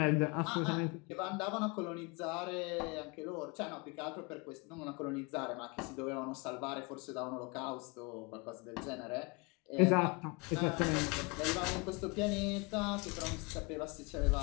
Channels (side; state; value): right; quieter; 29.0 dB